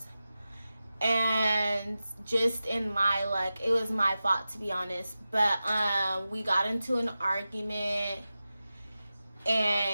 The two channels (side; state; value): both; inverted; correlation -0.93